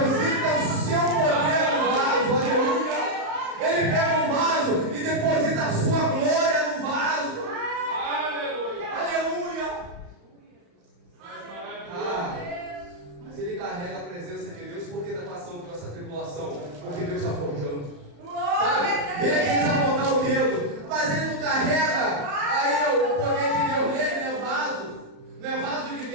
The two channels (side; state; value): left; late; 35 ms